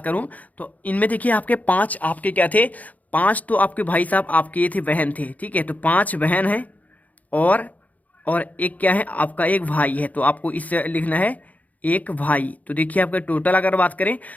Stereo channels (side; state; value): right; late; 0.076 ms